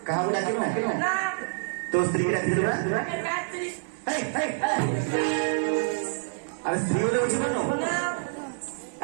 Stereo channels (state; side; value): silent; left; digital silence